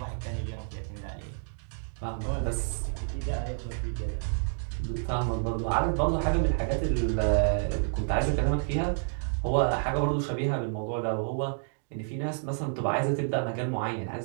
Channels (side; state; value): left; silent; digital silence